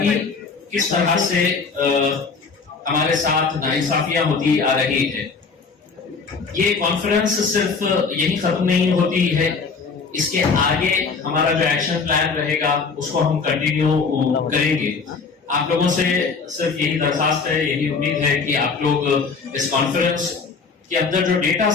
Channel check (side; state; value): right; quieter; 4.9 dB